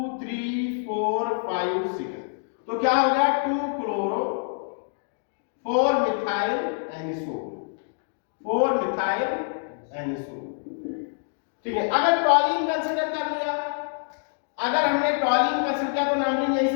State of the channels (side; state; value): right; silent; digital silence